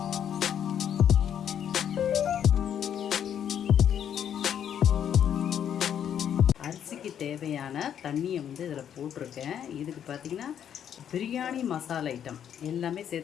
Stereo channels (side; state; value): right; quieter; 9.2 dB